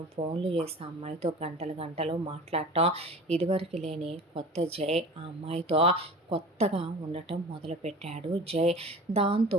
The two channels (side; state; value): both; normal; correlation 0.38